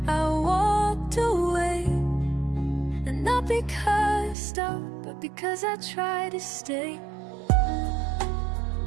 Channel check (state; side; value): drops out; left; at 4.4 s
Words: I walked away, and not because I stopped, but because I tried to stay.